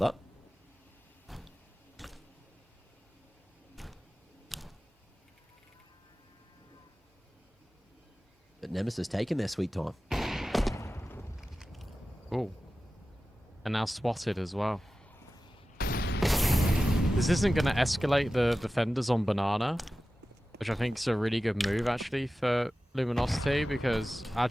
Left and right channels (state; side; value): normal; both; correlation 0.95